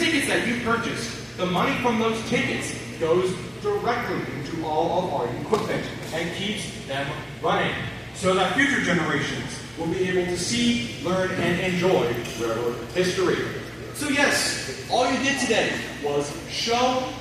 that you purchase, the money from those tickets goes directly into all of our equipment and keeps them running so that future generations will be able to see, learn, and enjoy railroad history. So yes, all you did today was show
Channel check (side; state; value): both; identical; correlation 1.00